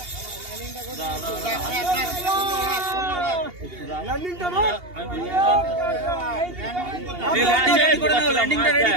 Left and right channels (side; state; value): left; late; 2.8 ms